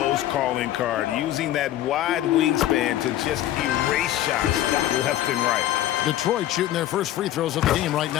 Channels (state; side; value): quieter; right; 13.3 dB